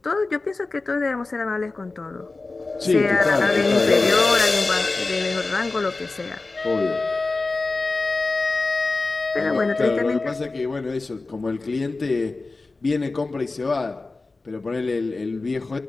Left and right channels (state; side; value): quieter; right; 3.5 dB